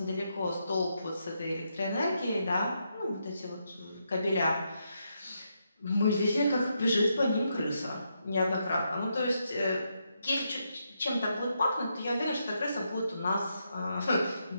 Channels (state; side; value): inverted; both; correlation -0.81